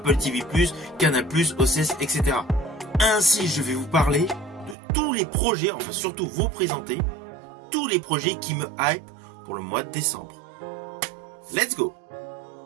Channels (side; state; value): left; drops out; at 4.8 s